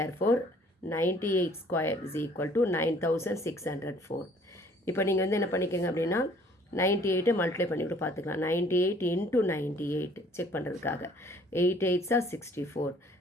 98² is equal to 9604. இப்போ நீங்கள் வந்து என்ன பண்ணிக்கோங்க அப்படின்னா 98 மல்டிப்ளை பண்ணிவிட்டு பார்த்துக்கலாம். 98 into 98 செக் பண்ணுறதுக்காக. 8 8s are 64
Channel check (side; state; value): both; normal; correlation 0.57